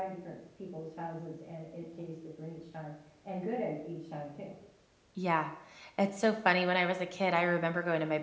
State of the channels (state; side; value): identical; both; correlation 1.00